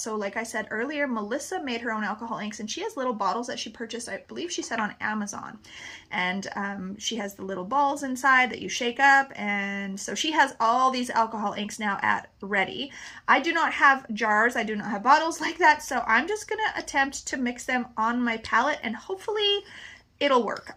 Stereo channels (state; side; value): identical; both; correlation 1.00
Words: like I said earlier, Melissa made her own alcohol inks, and she has little bottles that she purchased, I believe she said on Amazon. And she has the little balls inside that you shake up, and so she has all these alcohol inks now at ready. I do not have jars, I do not have bottles like that, so I'm just gonna attempt to mix them on my palette, and hopefully it'll work.